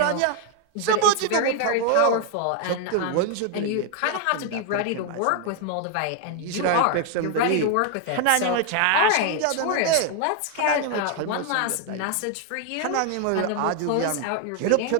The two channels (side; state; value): both; different; correlation 0.00